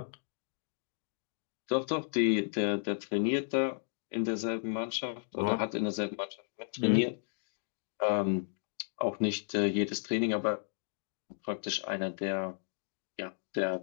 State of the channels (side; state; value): right; silent; digital silence